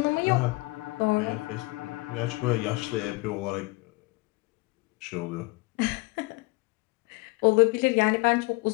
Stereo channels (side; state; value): right; quieter; 24.3 dB